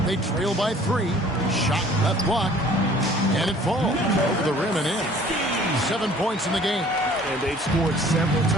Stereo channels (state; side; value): normal; both; correlation 0.53